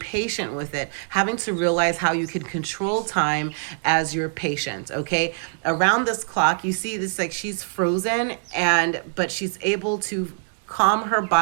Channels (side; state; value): left; silent; digital silence